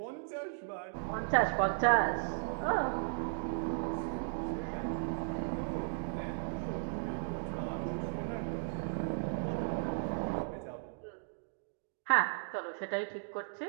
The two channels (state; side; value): silent; left; digital silence